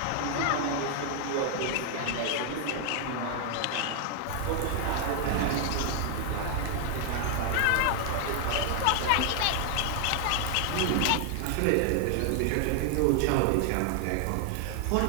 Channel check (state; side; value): different; both; correlation 0.00